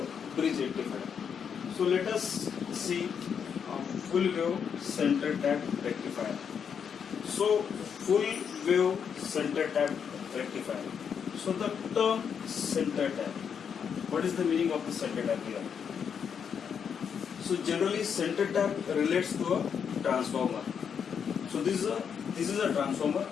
bridge rectifier. So let us see full wave center tap rectifier. So full wave center tap rectifier. So the term center tap, what is the meaning of the center tap here? So generally center tap relates to a transformer. So this is a transformer.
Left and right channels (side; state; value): right; quieter; 7.2 dB